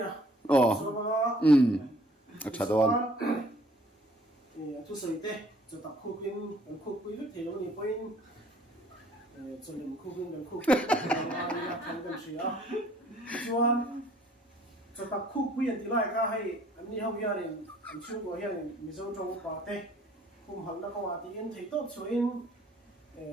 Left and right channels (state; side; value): normal; both; correlation 0.58